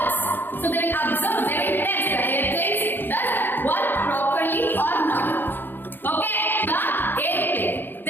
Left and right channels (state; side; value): late; right; 0.095 ms